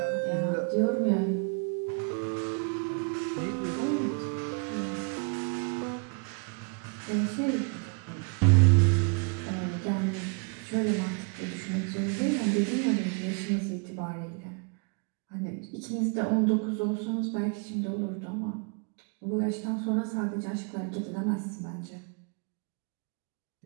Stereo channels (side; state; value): left; quieter; 35.5 dB